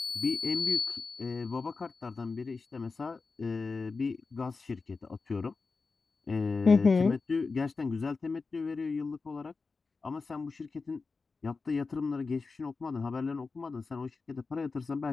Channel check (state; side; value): quieter; right; 4.3 dB